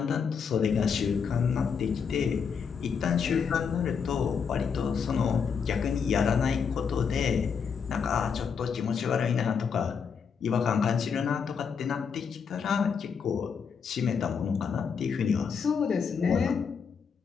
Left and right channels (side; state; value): right; quieter; 6.4 dB